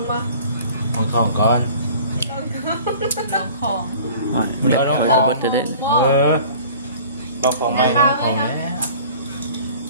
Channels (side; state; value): both; inverted; correlation -0.46